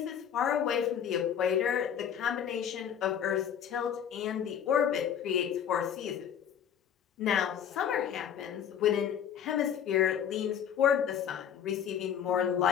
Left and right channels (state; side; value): quieter; right; 8.9 dB